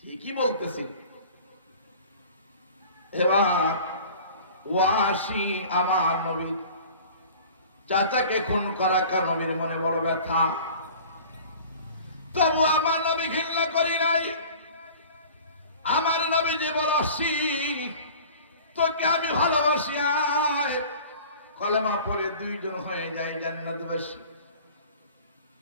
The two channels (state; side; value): inverted; both; correlation -0.44